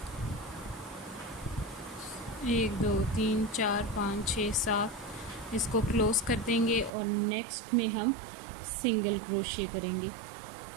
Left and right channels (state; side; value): drops out; left; at 6.9 s